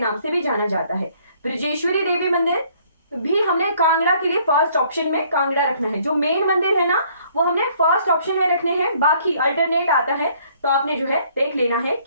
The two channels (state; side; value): inverted; both; correlation -0.62